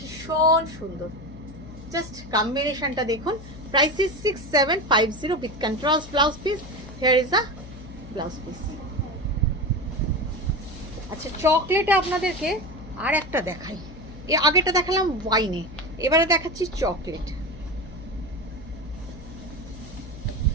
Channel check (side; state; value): left; noise; hum, 15 dB below the sound